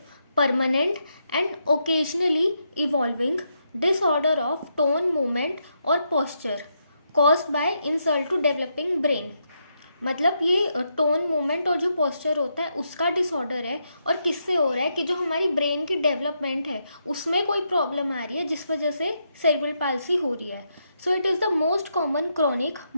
permanent and occasionally evolving disorder of tone, movement और posture caused by insult to developing brain. मतलब ये टोन, मूवमेंट और जो पोस्चर होता है उसका डिसऑर्डर है। और किससे हो रहा है कि जो हमारी ब्रेन की डेवलपमेंट है उसमें कोई प्रॉब्लम आ रही है जिस वजह से सेरिब्रल पाल्सी हो रही है। So it is the most common chronic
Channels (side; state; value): both; inverted; correlation -0.80